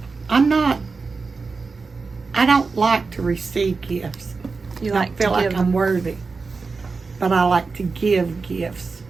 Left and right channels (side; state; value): left; quieter; 4.4 dB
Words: I don't like to receive gifts. You I like feel to like give I'm them. worthy. But I like to give gifts.